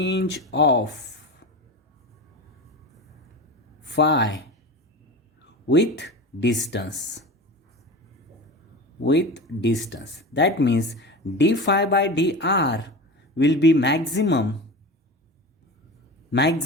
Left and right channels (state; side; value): normal; both; correlation 0.29